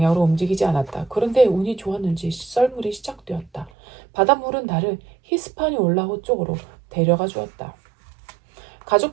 움직이지 않았다. 그런데 운이 좋았는지 썰물이 시작되었다. 바닷물은 나를 히스파니올라호 쪽으로 데려가 주었다.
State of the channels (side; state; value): left; drops out; at 3.7 s